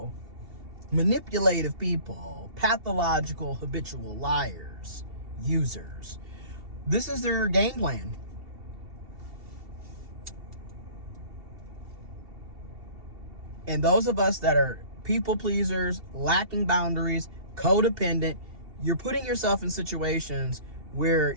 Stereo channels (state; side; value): late; left; 2.7 ms